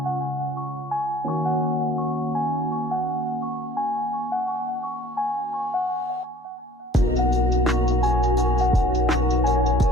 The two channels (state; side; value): normal; both; correlation 0.52